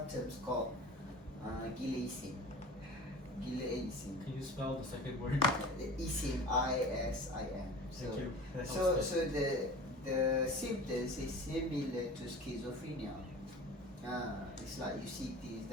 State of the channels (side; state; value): both; normal; correlation 0.39